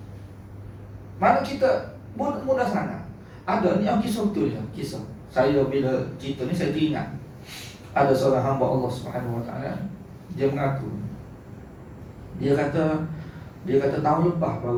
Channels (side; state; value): both; identical; correlation 1.00